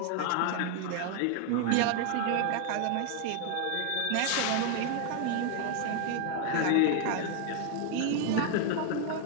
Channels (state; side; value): different; both; correlation 0.00